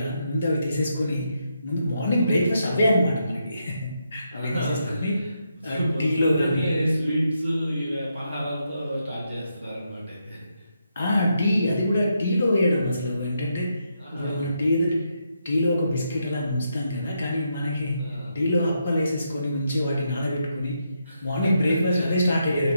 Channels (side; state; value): both; inverted; correlation -0.81